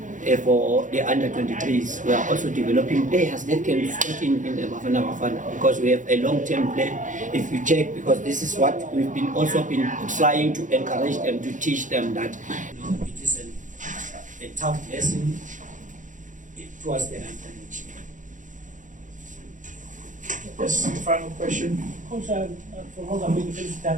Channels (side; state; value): left; late; 0.37 ms